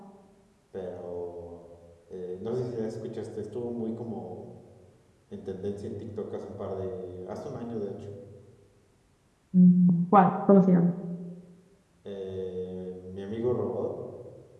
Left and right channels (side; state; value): both; identical; correlation 1.00